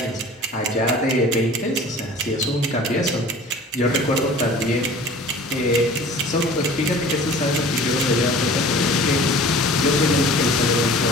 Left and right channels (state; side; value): normal; both; correlation 0.44